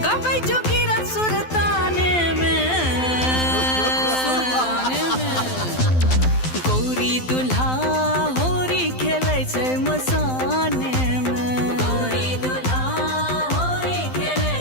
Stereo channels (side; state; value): right; late; 12 ms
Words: गावे जोगिरा सुरतान में। गौरी दुल्हा होरी खेले छे मसाने में, गौरी दुल्हा होरी खेले